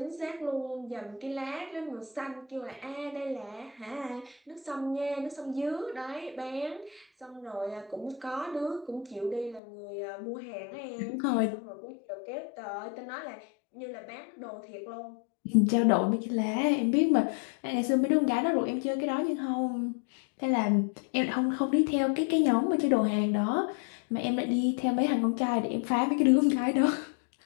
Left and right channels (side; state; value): right; drops out; at 9.6 s